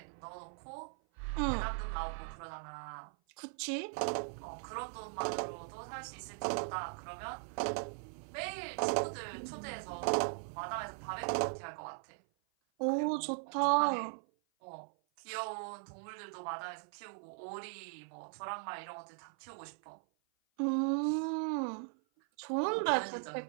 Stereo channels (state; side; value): silent; left; 52 dB below the other